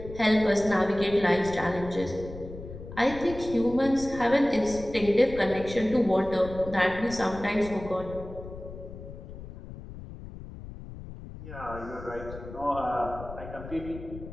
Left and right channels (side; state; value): left; noise; rumble, 13 dB below the sound